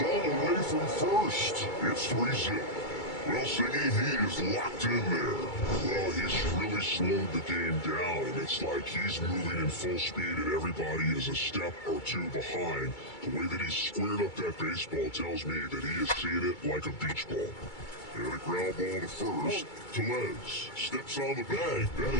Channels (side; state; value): right; late; 2.3 ms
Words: all the way from first. It's 3-0. Well, Singy, he is locked in there. Well, he's really slowed the game down, and it's like he's moving in full speed and everybody is a step or two behind. The way that he squared up that baseball tells me that he is seeing it like a beach ball. And a ground ball to first. Tellez steps on the bag. That